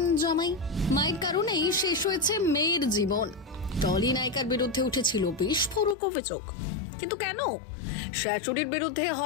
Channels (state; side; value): drops out; right; at 6.0 s